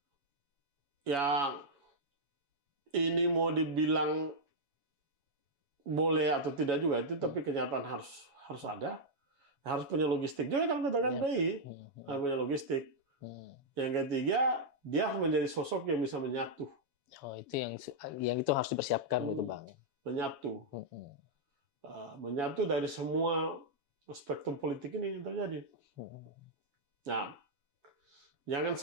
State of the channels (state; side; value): late; left; 7.2 ms